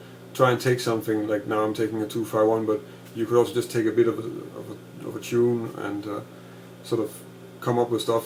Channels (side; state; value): both; identical; correlation 1.00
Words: Try and take something like, now I'm taking a 2-5-1, but you could also just take a bit of a tune and sort of come up with